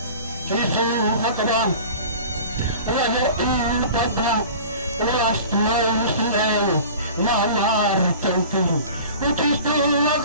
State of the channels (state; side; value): inverted; both; correlation -0.40